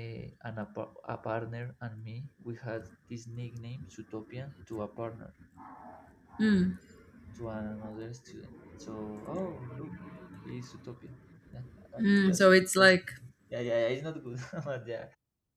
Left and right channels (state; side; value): identical; both; correlation 1.00